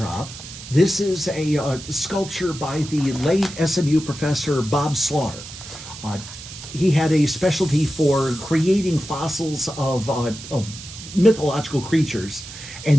this is a sculpture by the late SMU professor Bob Slaughter. He had a specialty for creating fossils of mythological creatures,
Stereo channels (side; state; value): right; noise; hiss, 13 dB below the sound